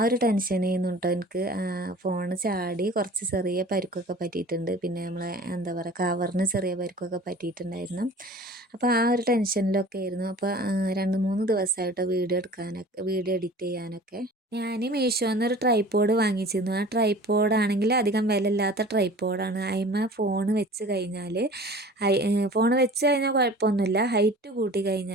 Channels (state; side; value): normal; both; correlation 0.43